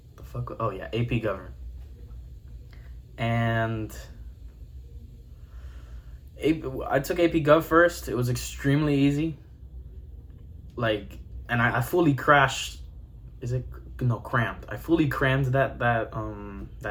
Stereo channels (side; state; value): both; identical; correlation 1.00